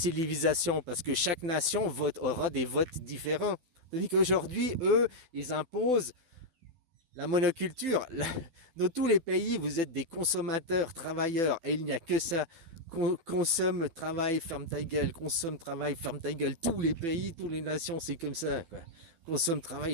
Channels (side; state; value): left; late; 12 ms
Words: parce que chaque nation aura des votes différents. Tandis qu'aujourd'hui, eux, ils imposent la monoculture. Dans tous les pays, vous êtes des consommateurs, travailleurs, et il n'y a que ça. Consomme, travaille, ferme ta gueule. Consomme, travaille, ferme ta gueule. Tous les pays, toutes les nations, c'est comme ça, quoi. Consomme,